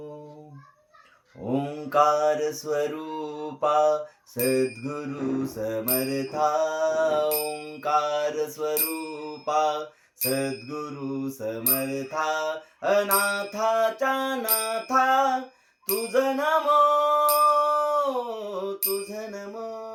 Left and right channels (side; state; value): both; identical; correlation 1.00